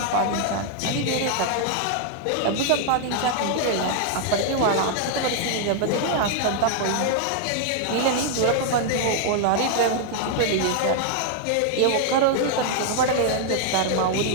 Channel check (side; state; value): both; different; correlation 0.00